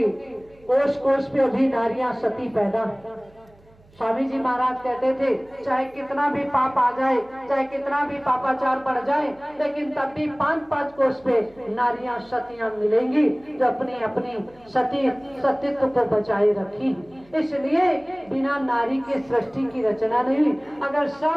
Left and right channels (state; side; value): noise; right; hum, 28 dB below the sound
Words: कोष कोष पे अभी नारियां सती पैदा। स्वामी जी महाराज कहते थे चाहे कितना भी पाप आ जाए, चाहे कितना भी पापाचार बढ़ जाए, लेकिन तब भी 5-5 कोष पे नारियां सतियां मिलेंगी जो अपनी अपनी सतीत्व को बचाए रखी। इसलिए बिना नारी के सृष्टि की रचना नहीं हुई। अगर